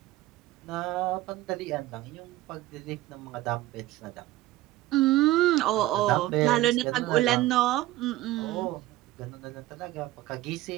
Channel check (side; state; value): left; quieter; 16.3 dB